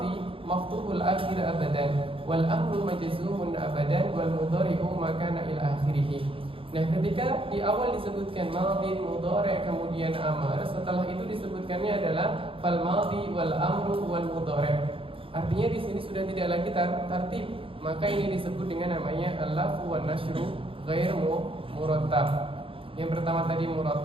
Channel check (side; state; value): left; late; 0.26 ms